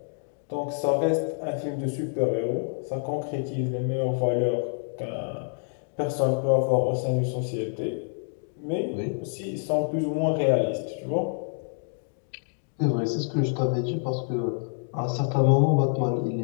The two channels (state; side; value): silent; right; 60 dB below the other